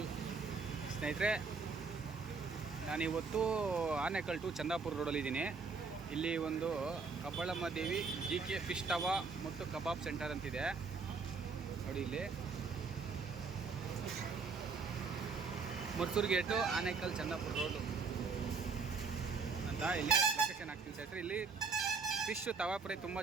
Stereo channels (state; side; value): quieter; left; 4.8 dB